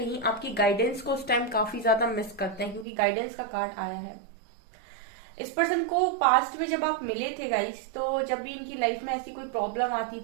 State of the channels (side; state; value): left; drops out; at 2.9 s